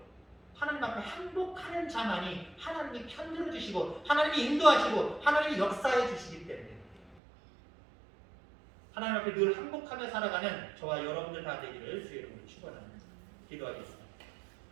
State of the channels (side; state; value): left; drops out; at 7.2 s